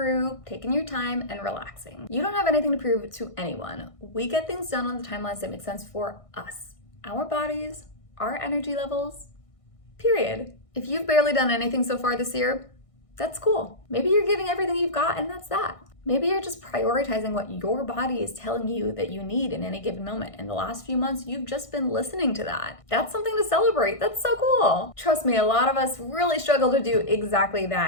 taking your time, and relaxing. You don't have anything to prove to anyone. We get things done on the timelines that make sense for us, our bodies, our energy levels, period. If you've barely done anything so far this year, that's cool. Maybe you're giving everything you've got and that's that. Maybe you're just prioritizing what your body is telling you that you need in any given moment. In the last few months, you've just been listening to that. That's something to celebrate. That's so cool. Trust me, a lot of us really struggle to do exactly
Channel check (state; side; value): late; right; 1.6 ms